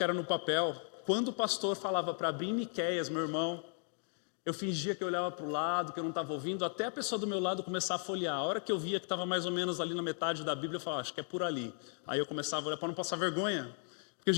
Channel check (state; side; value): silent; right; 54 dB below the other